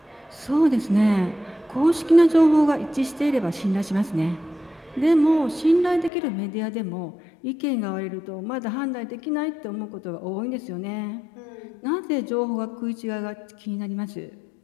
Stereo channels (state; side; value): drops out; right; at 6.1 s